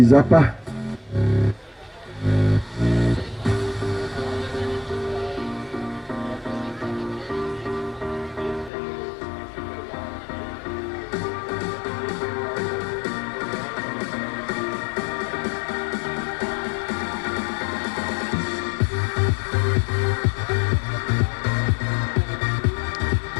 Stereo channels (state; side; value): drops out; right; at 8.7 s